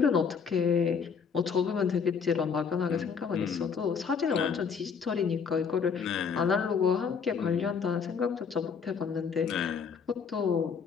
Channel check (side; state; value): right; quieter; 6.1 dB